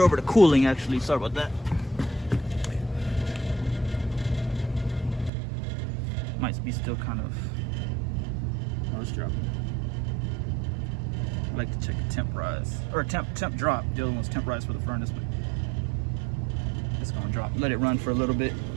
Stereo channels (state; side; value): drops out; left; at 5.3 s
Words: to cooling actually, sorry about that. Might be still kind of, oh, it's dropping. I like to check the temp rise, or temp drop. The other one's temp rise for the furnace, but it's gonna drop. Let it run for a little bit.